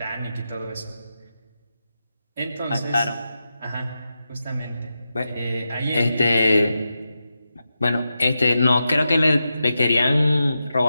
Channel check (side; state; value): both; inverted; correlation -0.89